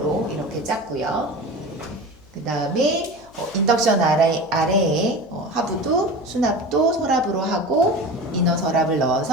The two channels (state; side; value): noise; left; hum, 27 dB below the sound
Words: 이렇게 짰고요. 그 다음에 인덕션 아래에 하부도 수납도 서랍으로 하고 이너 서랍을